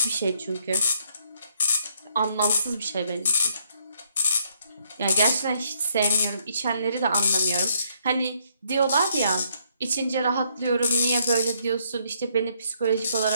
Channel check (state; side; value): inverted; both; correlation -0.70